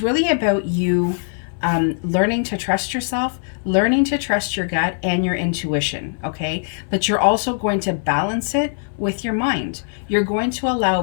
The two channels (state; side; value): silent; right; digital silence